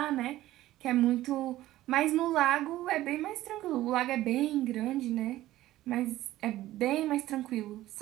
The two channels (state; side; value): quieter; left; 15.3 dB